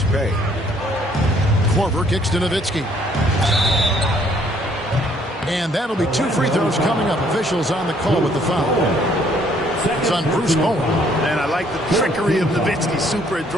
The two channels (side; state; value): both; normal; correlation 0.64